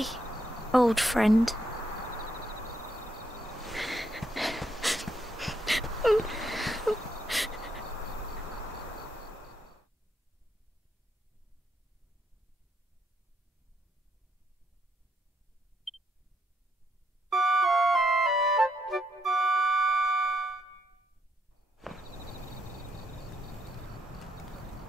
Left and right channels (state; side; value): normal; both; correlation 0.76